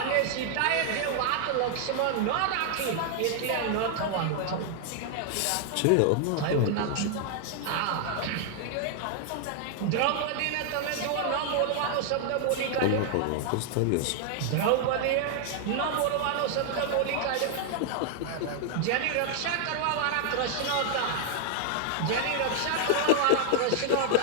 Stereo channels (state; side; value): different; both; correlation 0.00